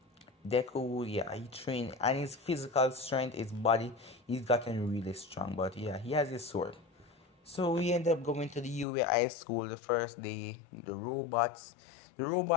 Deku, yeah, he trained and his physical strength, his body, he's gotten really strong. But yeah, he has his sword. So we end up going to the UA High School the first day. The robots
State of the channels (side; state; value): right; drops out; at 8.8 s